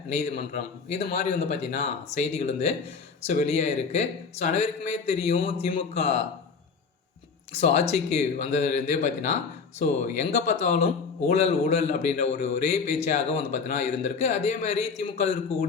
நீதிமன்றம், இது மாதிரி பார்த்தீங்கன்னா செய்திகள் வெளியாயிருக்கு. அனைவருக்குமே தெரியும், திமுக ஆட்சிக்கு வந்ததுலேருந்தே பார்த்தீங்கன்னா எங்கே பார்த்தாலும் ஊழல் ஊழல் அப்படின்ற ஒரே பேச்சாக பார்த்தீங்கன்னா இருந்திருக்கு. அதே மாதிரி திமுக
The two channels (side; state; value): right; quieter; 5.2 dB